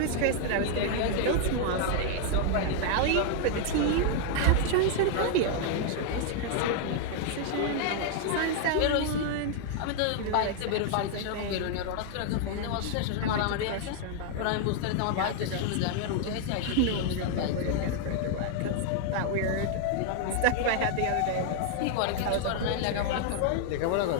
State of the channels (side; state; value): both; different; correlation 0.00